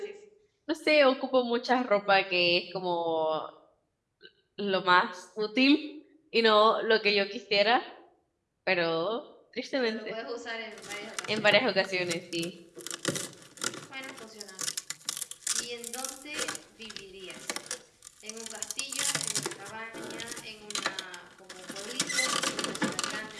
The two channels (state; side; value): identical; both; correlation 1.00